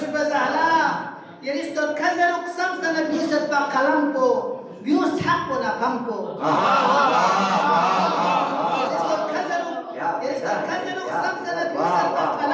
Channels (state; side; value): identical; both; correlation 1.00